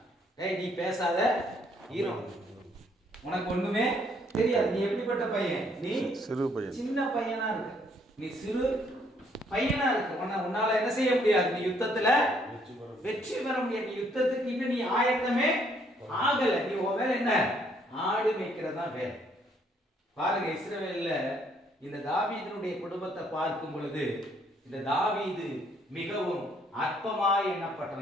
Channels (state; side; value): normal; both; correlation 0.67